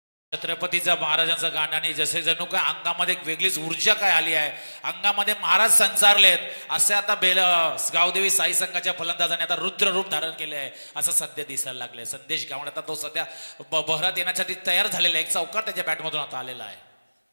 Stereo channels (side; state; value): both; inverted; correlation -1.00